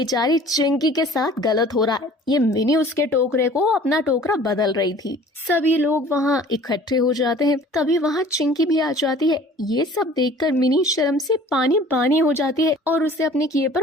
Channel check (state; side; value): normal; both; correlation 0.48